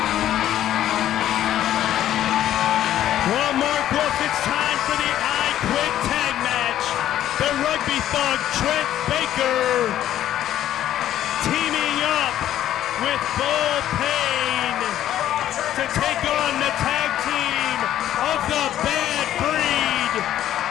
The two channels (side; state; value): right; quieter; 12.0 dB